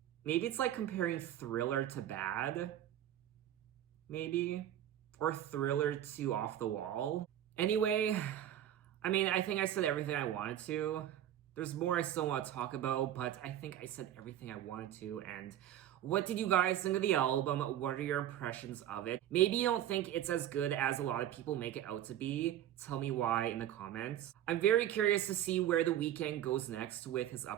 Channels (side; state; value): left; quieter; 11.6 dB